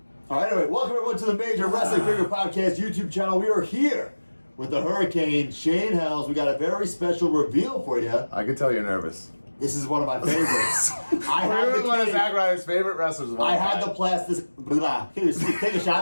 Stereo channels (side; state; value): both; inverted; correlation -1.00